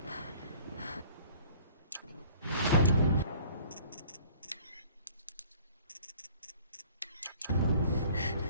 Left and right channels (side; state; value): both; inverted; correlation -0.52